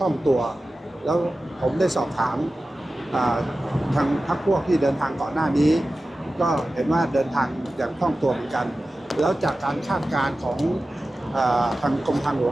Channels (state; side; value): normal; both; correlation 0.95